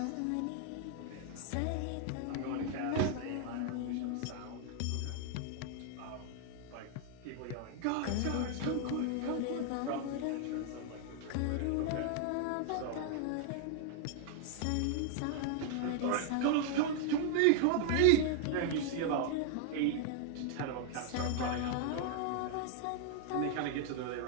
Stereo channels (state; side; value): different; both; correlation 0.00